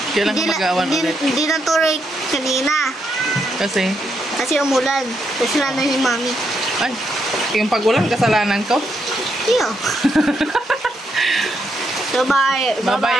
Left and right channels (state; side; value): normal; both; correlation 0.79